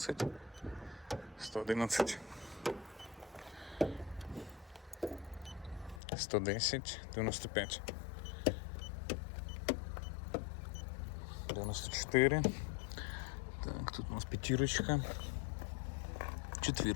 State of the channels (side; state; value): right; drops out; at 6.0 s